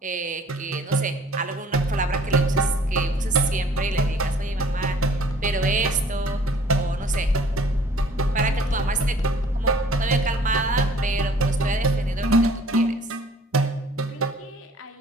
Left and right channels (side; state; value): both; normal; correlation 0.54